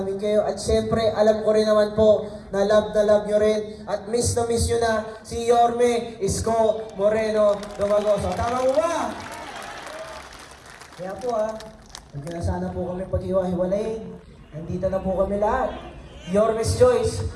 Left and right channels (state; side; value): identical; both; correlation 1.00